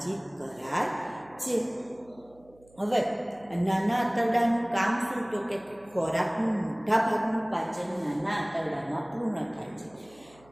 કરાય છે. હવે નાના આંતરડાનું કામ શું? તો કે ખોરાકનું મોટા ભાગનું પાચન નાના આંતરડામાં પૂર્ણ થાય છે.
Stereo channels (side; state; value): right; noise; hum, 28 dB below the sound